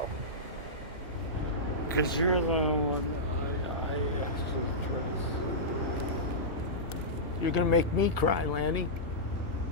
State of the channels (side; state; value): both; normal; correlation -0.14